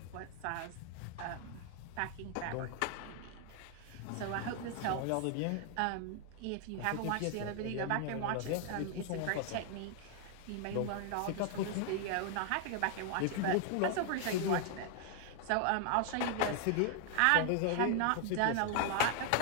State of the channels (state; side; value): different; both; correlation 0.00